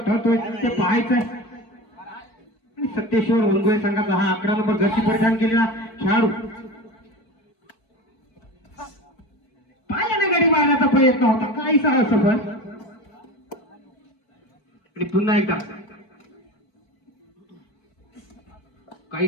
ते पाहायचंय। आणि सत्येश्वर वनगोळे संघाचा हा 11 नंबर जर्सी परिधान केलेला खेळाडू पायाने गडी मारण्याचा प्रयत्न होता, काहीसा असफल। आणि पुन्हा एकदा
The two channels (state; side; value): late; right; 4.5 ms